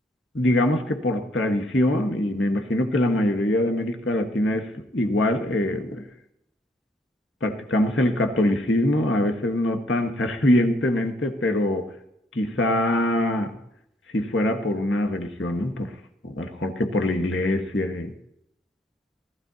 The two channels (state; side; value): normal; both; correlation 0.67